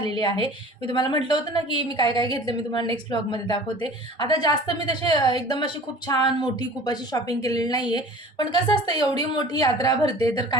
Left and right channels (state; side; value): normal; both; correlation 0.43